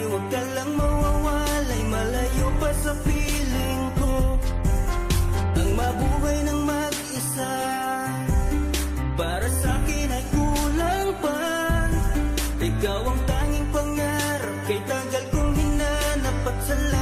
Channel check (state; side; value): identical; both; correlation 1.00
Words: huwag ka lang mawawalay, malayo pa sa piling ko. Ang mabuhay ng mag-isa, para sa akin ay kulang pa. Ikaw ang tanging pangarap, kay tagal kong hinanap, at